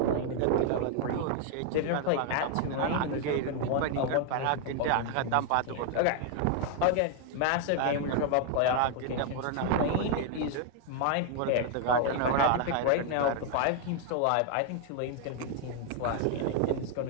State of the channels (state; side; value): different; both; correlation 0.00